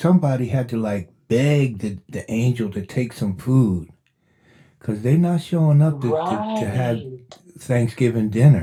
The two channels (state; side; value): identical; both; correlation 1.00